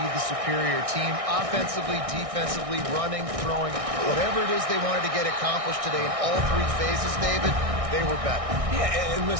the superior team. Offensively, defensively, running, throwing, whatever it is they wanted to get accomplished today in all three phases, David, they were better. Yeah, and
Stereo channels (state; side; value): late; left; 1.6 ms